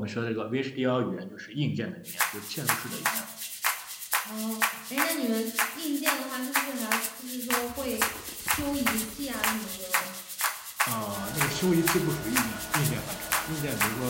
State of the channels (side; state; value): both; identical; correlation 1.00